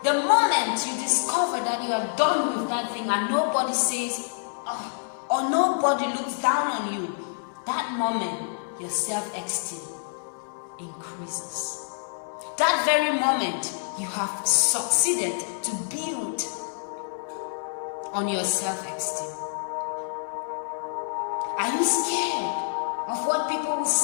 The moment you discover that you are done with that thing and nobody says, oh, or nobody looks down on you, that moment your self-esteem increases. That very moment you have succeeded to build on your self-esteem. Are you scared of what people will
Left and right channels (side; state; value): right; silent; digital silence